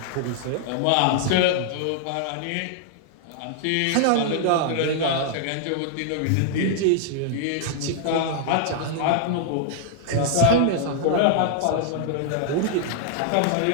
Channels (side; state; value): both; different; correlation -0.01